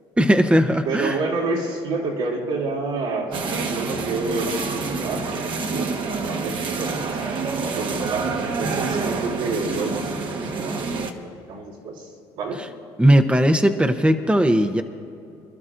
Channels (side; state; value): both; normal; correlation 0.76